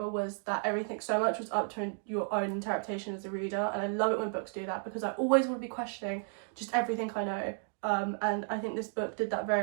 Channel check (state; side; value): silent; left; 56 dB below the other